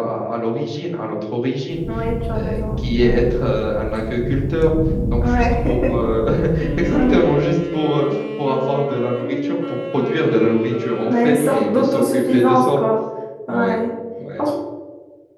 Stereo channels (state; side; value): identical; both; correlation 1.00